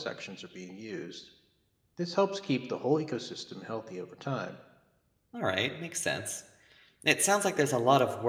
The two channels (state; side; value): identical; both; correlation 1.00